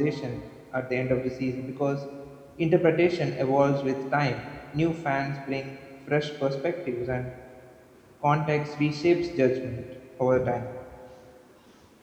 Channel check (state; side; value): identical; both; correlation 1.00